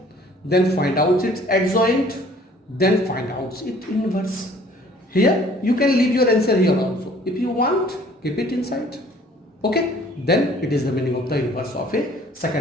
then find out its adjoint, then find out its inverse. Here you can leave your answer here also. If you want, keep it inside. Okay? Then it is the meaning of the inverse of a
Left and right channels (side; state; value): both; normal; correlation 0.55